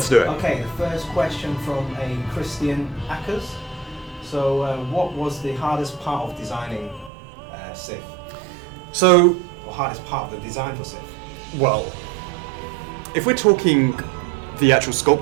do it. Okay, the first question from a Christian Ackers. So, what was the hardest part of designing Sif? So, Or hardest part of the design for Sif? well, if we're talking the actual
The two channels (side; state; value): left; drops out; at 7.1 s